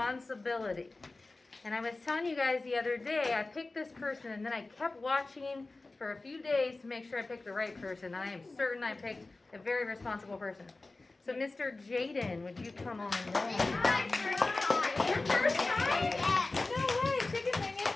And I was telling you guys the other day, I picked this person and then I kept watching for a few days to make sure I picked the right person. And I am certain I picked a very responsible person. So Mr. Jayden, would you come on down? Your first time? No way, chicken winging.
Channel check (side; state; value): right; quieter; 3.3 dB